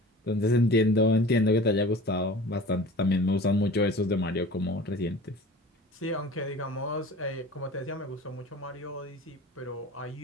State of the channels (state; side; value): normal; both; correlation 0.41